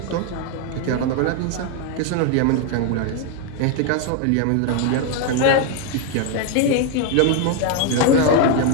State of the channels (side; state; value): both; different; correlation 0.01